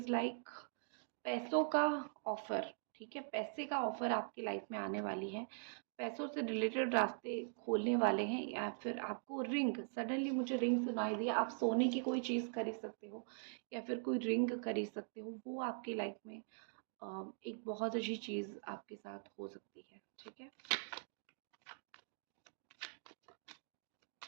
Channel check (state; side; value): silent; left; digital silence